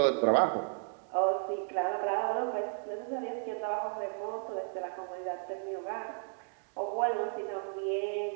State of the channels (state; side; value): silent; left; 55 dB below the other